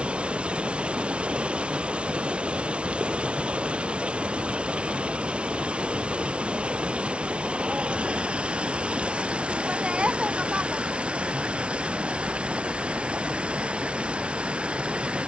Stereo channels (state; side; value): late; left; 0.059 ms